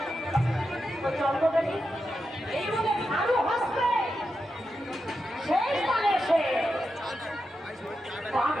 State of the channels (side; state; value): both; normal; correlation 0.88